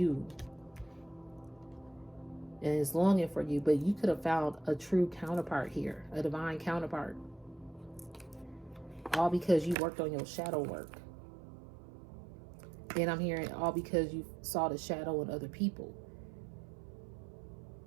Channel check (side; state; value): left; drops out; at 9.8 s